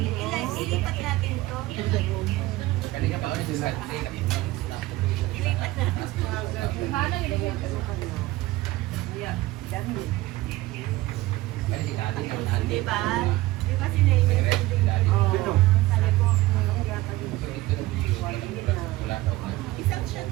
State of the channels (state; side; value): quieter; left; 18.1 dB